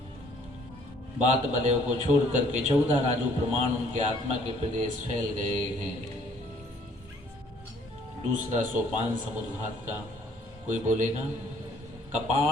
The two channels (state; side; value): normal; both; correlation 0.61